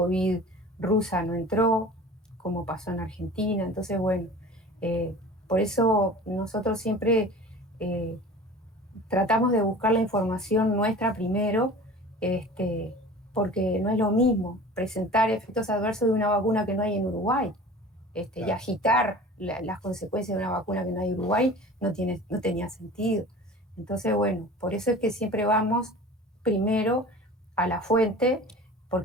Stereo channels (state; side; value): normal; both; correlation 0.40